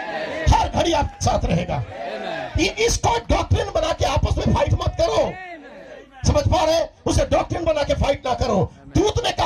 हर घड़ी आपके साथ रहेगा। इसको डॉक्ट्रिन बना के आपस में फाइट मत करो, समझ पा रहे? उसे डॉक्ट्रिन बना के फाइट ना करो। दूत ने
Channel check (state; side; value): identical; both; correlation 1.00